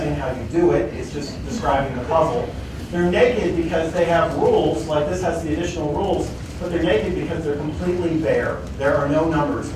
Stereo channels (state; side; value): identical; both; correlation 1.00